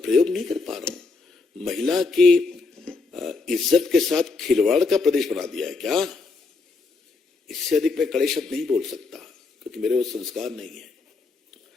प्रयोग नहीं कर पा रहा हूं, महिला की इज्जत के साथ खिलवाड़ का प्रदेश बना दिया है क्या? इससे अधिक मैं कड़े शब्द नहीं बोल सकता क्योंकि मेरे वो संस्कार नहीं है।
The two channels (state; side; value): quieter; right; 4.1 dB